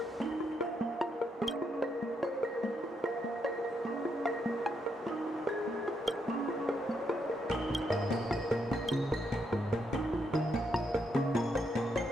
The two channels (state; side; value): normal; both; correlation 0.78